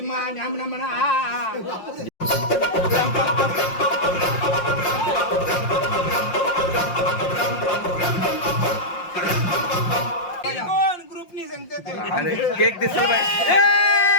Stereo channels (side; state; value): right; late; 5.6 ms